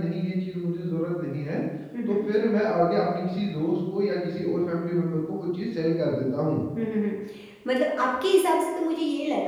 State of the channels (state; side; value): identical; both; correlation 1.00